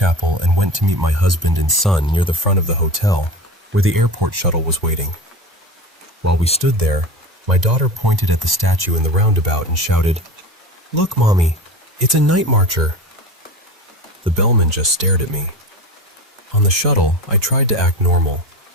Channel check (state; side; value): normal; both; correlation 0.31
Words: and went to meet my husband and son near the front of the hotel, where the airport shuttle was waiting. While we stood there, my daughter pointed at the statue in the roundabout and shouted, "Look, Mommy, it's a night marcher." The bellman just stared at me. On the shuttle, I tried to act normal,